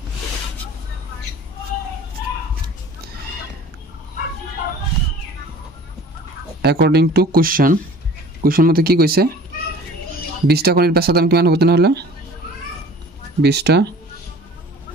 অ্যাকর্ডিং টু কোশ্চেন মধ্যে কি কইছে 20টা কণীর বেচা দাম কিমান হ'ব তেনেহলে 20টা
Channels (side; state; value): both; normal; correlation 0.46